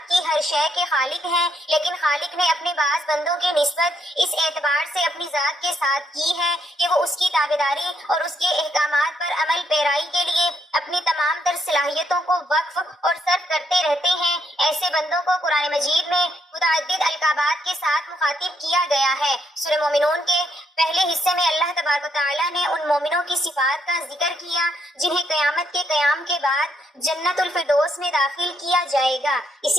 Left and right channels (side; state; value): both; normal; correlation 0.74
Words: کی ہر شے کے خالق ہیں، لیکن خالق نے اپنے بعض بندوں کی نسبت اس اعتبار سے اپنی ذات کے ساتھ کی ہے کہ وہ اس کی تابعداری اور اس کے احکامات پر عمل پیرائی کے لیے اپنی تمام تر صلاحیتوں کو وقف اور صرف کرتے رہتے ہیں۔ ایسے بندوں کو قرآن مجید میں متعدد القابات کے ساتھ مخاطب کیا گیا ہے۔ سورہ مومنون کے پہلے حصے میں اللہ تبارک و تعالیٰ نے ان مومنوں کی صفات کا ذکر کیا جنہیں قیامت کے قیام کے بعد جنت الفردوس میں داخل کیا جائے گا۔